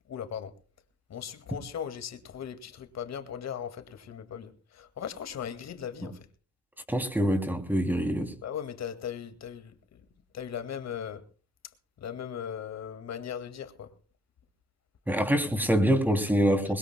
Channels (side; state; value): both; normal; correlation 0.68